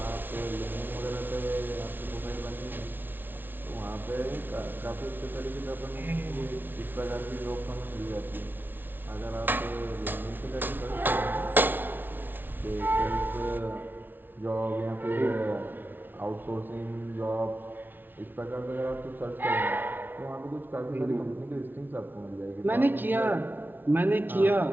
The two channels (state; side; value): late; left; 0.093 ms